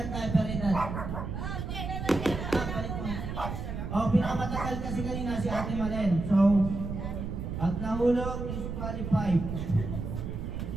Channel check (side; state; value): right; noise; rumble, 5 dB below the sound